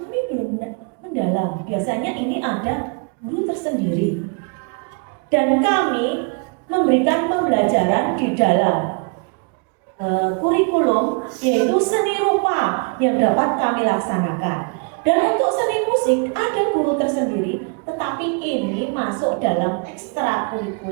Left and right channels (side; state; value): left; quieter; 36.5 dB